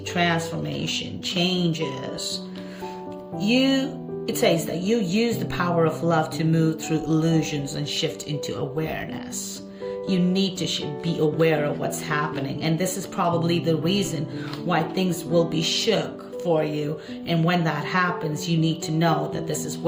transformation, changes. It says that you use the power of love to move through illusions and shift into awareness. You need to be aware of what's happening, and this is probably the reason why things will be shook for you. And when that happens, you need to know that this is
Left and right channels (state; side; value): identical; both; correlation 1.00